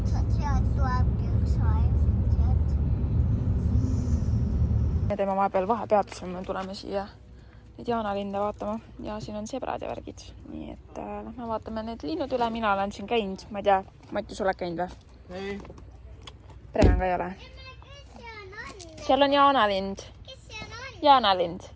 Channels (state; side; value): identical; both; correlation 1.00